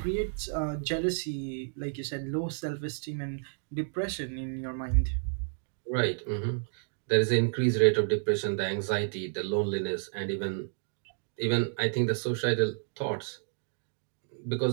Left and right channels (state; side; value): silent; left; digital silence